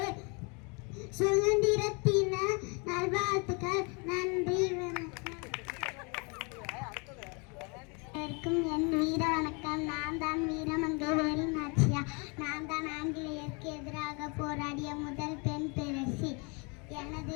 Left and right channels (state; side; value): quieter; right; 32.2 dB